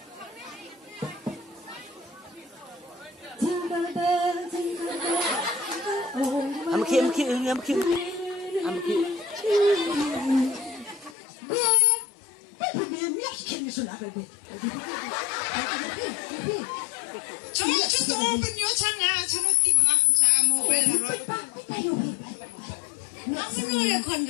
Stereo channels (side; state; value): right; drops out; at 11.2 s